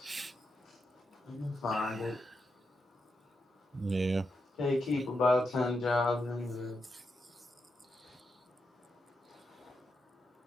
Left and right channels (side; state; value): both; normal; correlation 0.85